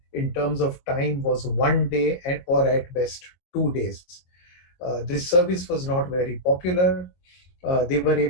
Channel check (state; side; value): late; right; 22 ms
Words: in terms of time was 1 day or at best 2 days. This service was not very popular. They were